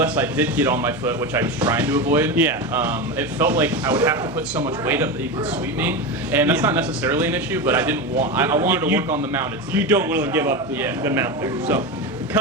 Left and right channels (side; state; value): both; normal; correlation 0.19